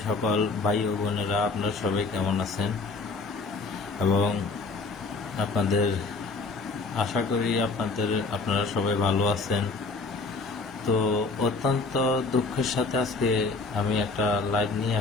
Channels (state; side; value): quieter; right; 4.0 dB